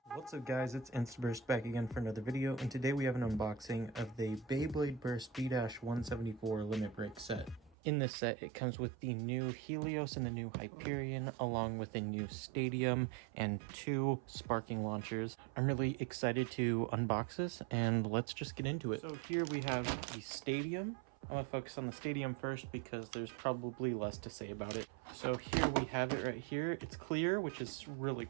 What's up guys, it's Instaburst back again for another video, and today we have an unboxing of the Beyblade Burst B-174 limit break set. In this set, it comes with the new Helios and the new Hyperion, along with a new Stadium and 2 sparking launchers. I'm really excited to unbox this, and let's just get into it. So here we have the Stadium. I'm going to focus on the Stadium first because there's probably less to say about it. So here we have it right here. It's clear, which is really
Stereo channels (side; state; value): left; drops out; at 7.8 s